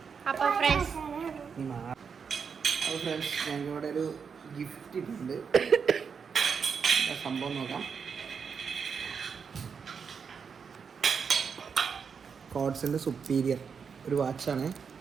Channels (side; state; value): left; quieter; 6.2 dB